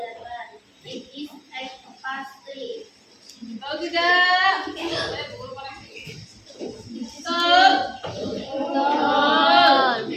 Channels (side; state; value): both; identical; correlation 1.00